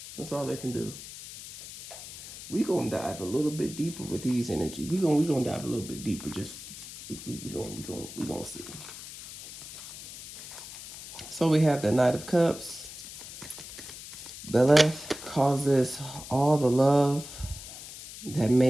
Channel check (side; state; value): left; noise; hiss, 13 dB below the sound